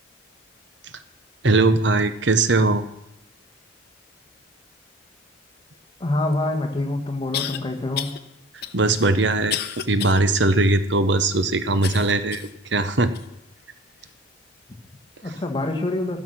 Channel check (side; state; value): both; normal; correlation 0.45